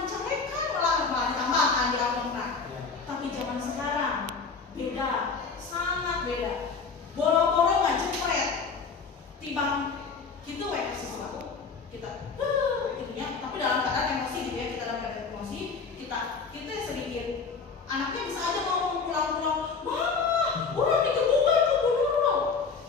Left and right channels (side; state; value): right; quieter; 5.1 dB